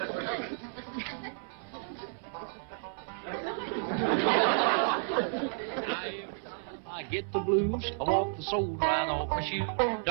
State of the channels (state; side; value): silent; left; 57 dB below the other